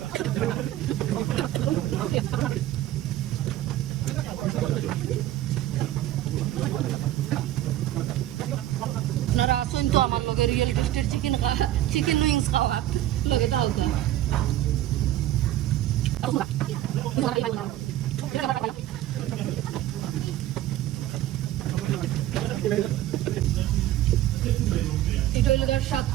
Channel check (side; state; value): left; quieter; 13.7 dB